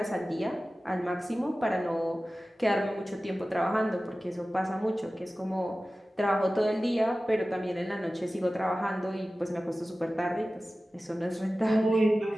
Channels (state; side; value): normal; both; correlation 0.96